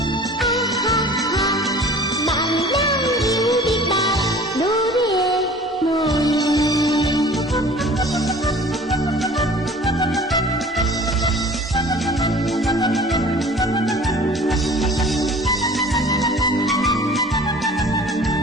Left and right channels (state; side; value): normal; both; correlation 0.46